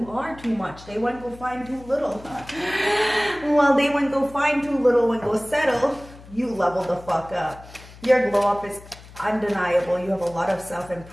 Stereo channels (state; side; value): noise; left; hum, 19 dB below the sound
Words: are too much. They wouldn't go find too little. Well, they wouldn't go find too little and go settle. You level the fuck up. Your glow up is undeniable. You have a lot of